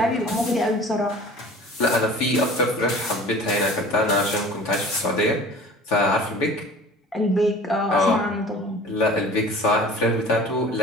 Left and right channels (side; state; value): both; normal; correlation 0.43